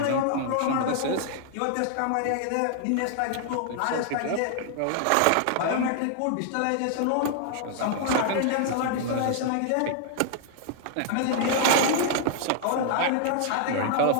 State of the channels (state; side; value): different; both; correlation 0.00